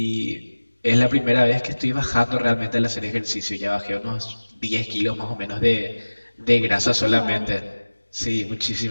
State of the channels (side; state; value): both; inverted; correlation -1.00